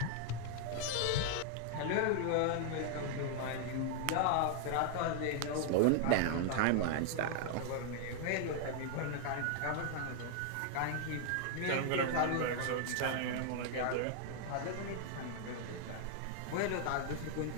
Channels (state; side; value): different; both; correlation 0.00